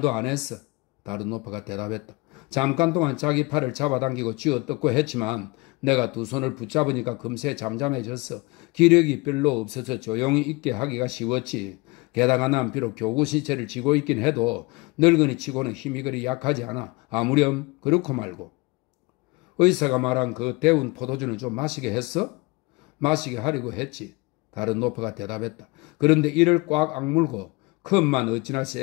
안 했어. 다른 노파가 대답했다. 잠깐 동안 자기 팔을 잡아당기고 쥐어뜯고 했지만 내가 두 손을 붙잡으니까 금세 잠잠해졌어. 기력이 별로 없어서 조용히 있게 하기가 쉬웠지. 게다가 난 비록 교구 시체를 쥐고 있긴 해도 늙은이 치고는 힘이 그리 약하지 않아. 아무렴 그렇고 말고. 의사가 말한 그 데운 포도주는 좀 마시게 했어? 마시게 하려고 했지. 다른 노파가 대답했다. 그런데 이를 꽉 악물고 컵만 어찌나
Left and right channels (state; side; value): quieter; right; 24.9 dB